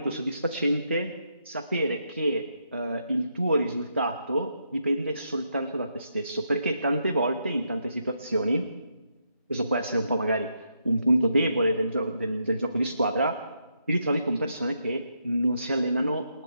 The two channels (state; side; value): inverted; both; correlation -0.80